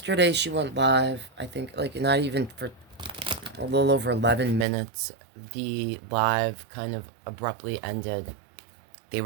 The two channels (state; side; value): drops out; left; at 4.7 s